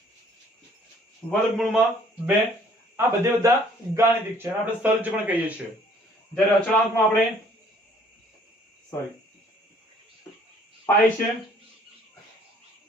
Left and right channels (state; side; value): normal; both; correlation 0.59